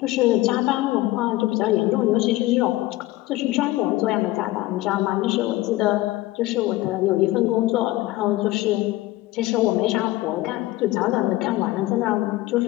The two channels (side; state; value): right; quieter; 17.7 dB